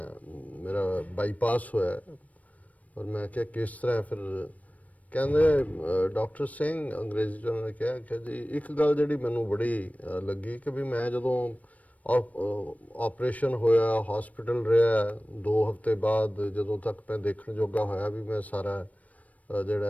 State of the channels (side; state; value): right; late; 0.070 ms